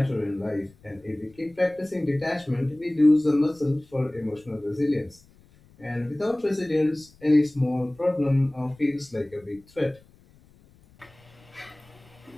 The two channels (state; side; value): noise; left; rumble, 28 dB below the sound